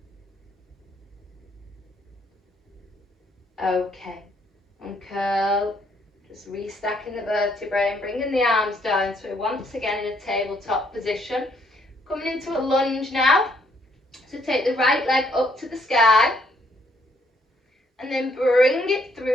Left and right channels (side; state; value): both; normal; correlation 0.69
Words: Okay, uncurl, just restacking the vertebrae and bringing the arms down. So we're once again in a tabletop position. Coming into a lunge now. So take the right leg up to the sky and then bring it